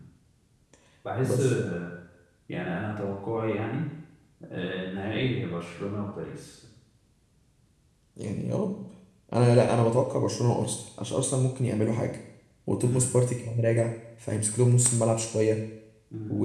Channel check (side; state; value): both; identical; correlation 1.00